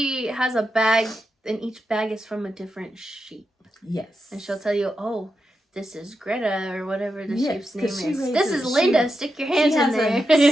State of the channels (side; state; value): both; normal; correlation 0.87